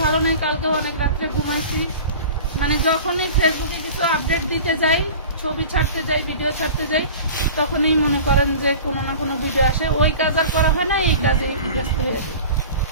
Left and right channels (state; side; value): inverted; both; correlation -0.38